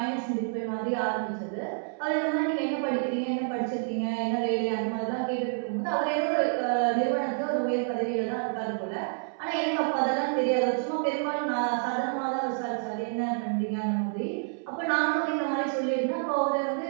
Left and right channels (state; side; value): silent; left; 59 dB below the other